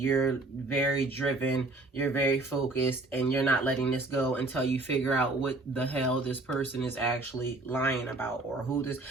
very driven, you're very focused, and you're not letting this go until you figure out what the hell this person is actually lying about, or who this,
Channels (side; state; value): left; quieter; 3.0 dB